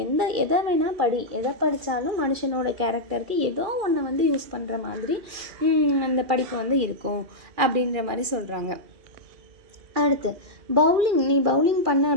எதை வேணால் படி, எதை படித்தாலும் மனுஷனோட கேரக்டருக்கு ஏதோ ஒன்று வந்து யூஸ் பண்ணுற மாதிரி அந்த படிப்பு வந்து இருக்கும் அப்படின்ற மாதிரி சொல்கிறாங்க. அடுத்து பவுலிங், நீ பவுலிங் பண்ண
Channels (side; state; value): left; late; 2.4 ms